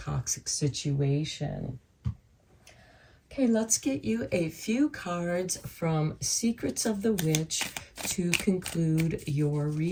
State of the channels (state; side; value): identical; both; correlation 1.00